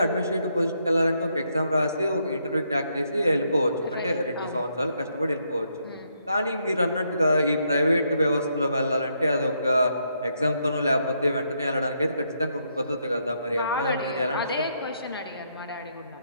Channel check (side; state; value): both; inverted; correlation -0.76